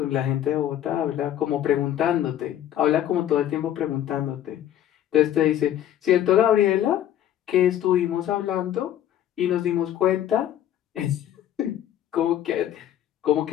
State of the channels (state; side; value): quieter; right; 11.5 dB